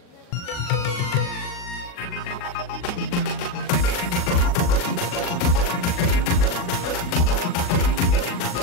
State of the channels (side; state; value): right; late; 40 ms